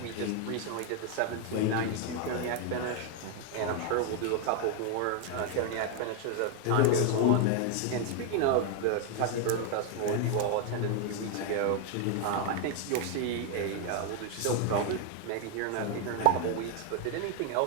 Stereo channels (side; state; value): both; different; correlation 0.01